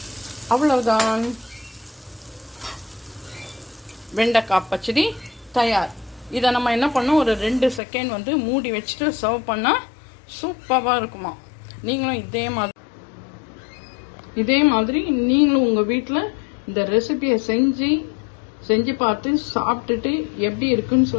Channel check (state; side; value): drops out; right; at 7.8 s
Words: அவ்வளவுதான், வெண்டைக்காய் பச்சடி தயார். இதை நம்ம என்ன பண்ணோம், ஒரு 2 செகண்ட் வந்து மூடி வச்சுட்டு சர்வ் பண்ணால் சூப்பராக இருக்குமா. நீங்களும் இதே மாதிரி நீங்களும் உங்கள் வீட்டில் இந்த ரெசிபியை செஞ்சு பார்த்து சாப்பிட்டுட்டு எப்படி இருக்குன்னு